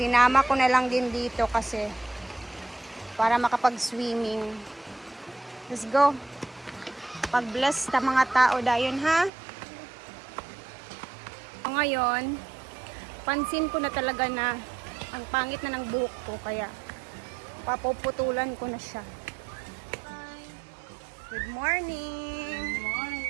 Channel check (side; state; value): left; drops out; at 9.3 s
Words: ko na lang din dito kasi para makapag-swimming. Let's go. Pag-bless sa mga tao dayon, ha? So, ngayon, pansin ko na talaga na ang pangit na ng buhok ko. Kaya papuputulan ko na siya. Good morning! Good morning!